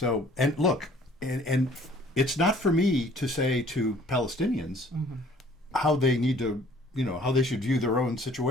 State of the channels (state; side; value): normal; both; correlation 0.55